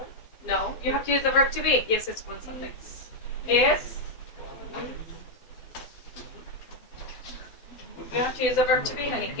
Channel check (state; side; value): late; right; 12 ms